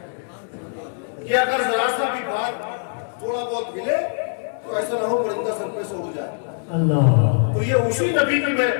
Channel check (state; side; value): silent; right; 63 dB below the other